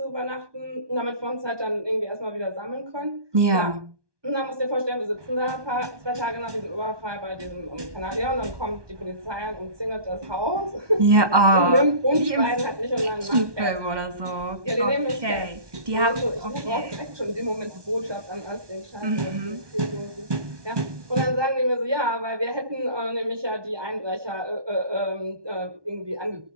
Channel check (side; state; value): left; late; 1.2 ms